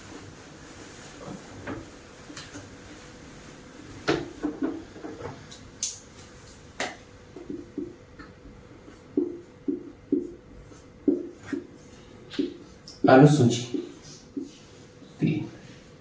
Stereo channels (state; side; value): identical; both; correlation 1.00